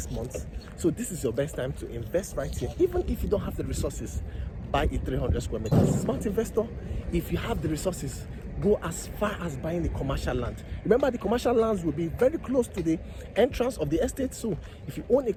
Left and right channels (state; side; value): identical; both; correlation 1.00